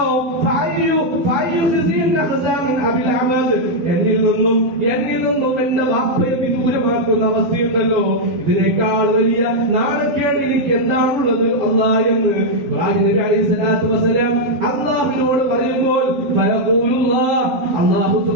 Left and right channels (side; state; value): left; late; 12 ms